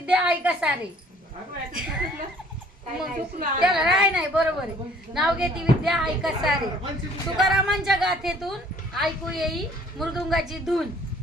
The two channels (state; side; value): normal; both; correlation 0.56